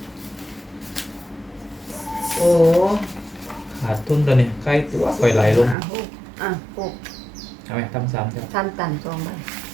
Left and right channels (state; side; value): drops out; left; at 5.8 s